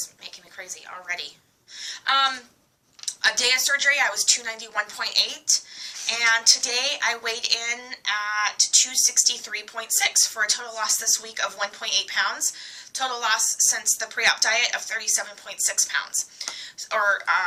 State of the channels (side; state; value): both; identical; correlation 1.00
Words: making me crazy already. A day of surgery, I was 291.8. And today I weighed in at 263.6 for a total loss this week of 1.8 pounds. Total loss since the pre-op diet of 37.6 pounds, or